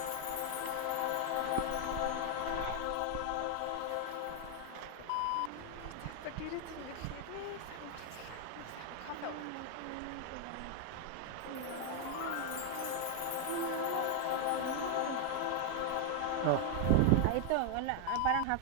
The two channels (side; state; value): both; different; correlation 0.00